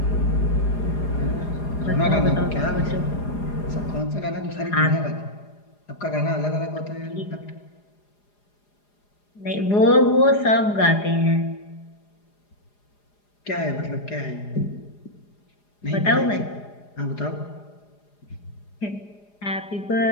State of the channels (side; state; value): right; late; 4.9 ms